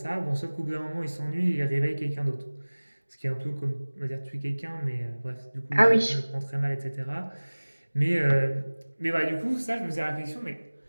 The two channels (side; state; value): both; inverted; correlation -1.00